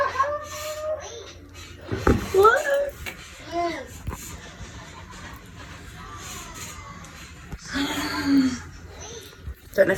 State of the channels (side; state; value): both; identical; correlation 1.00